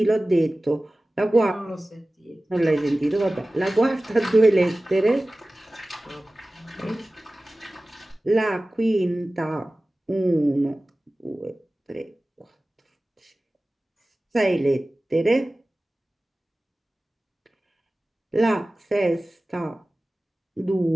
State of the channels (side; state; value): both; normal; correlation 0.97